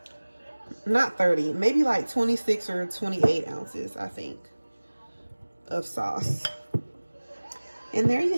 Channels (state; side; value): inverted; both; correlation -1.00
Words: Not 30, maybe like 26 or 28 ounces, I think, of sauce. And there